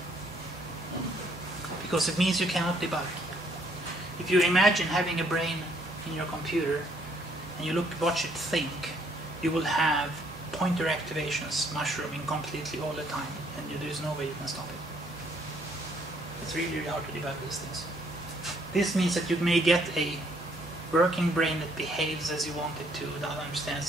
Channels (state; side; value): noise; right; hum, 21 dB below the sound